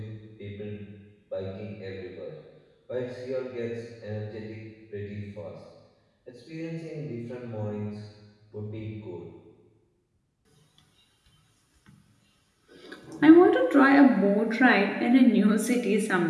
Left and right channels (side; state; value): both; identical; correlation 1.00